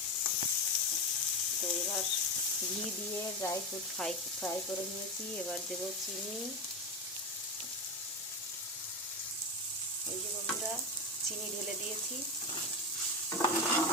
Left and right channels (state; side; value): normal; both; correlation 0.16